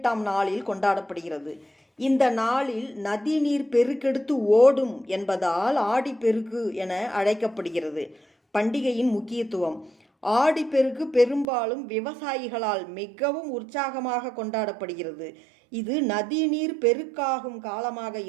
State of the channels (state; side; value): drops out; left; at 11.5 s